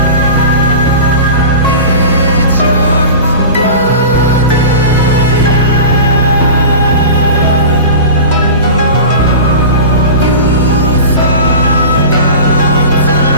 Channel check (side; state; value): both; inverted; correlation -0.32